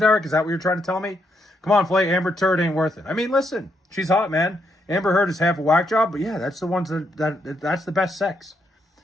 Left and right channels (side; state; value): both; normal; correlation 0.77